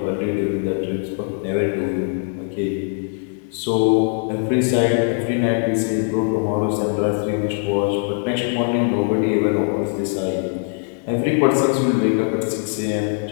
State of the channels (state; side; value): silent; right; 55 dB below the other